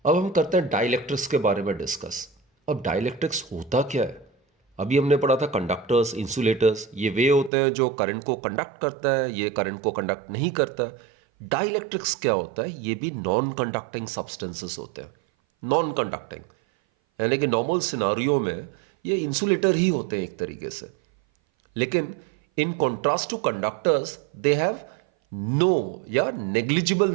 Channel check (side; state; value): left; drops out; at 7.5 s